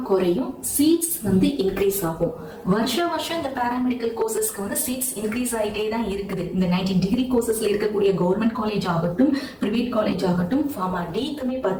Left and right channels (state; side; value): identical; both; correlation 1.00